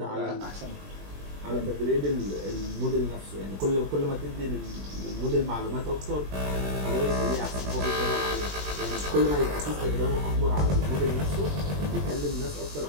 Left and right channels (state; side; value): late; left; 21 ms